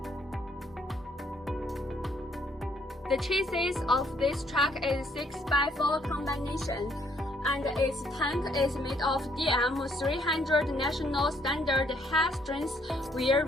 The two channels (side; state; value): both; normal; correlation 0.68